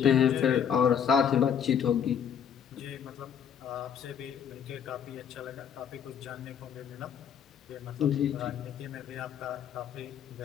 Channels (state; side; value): quieter; right; 8.2 dB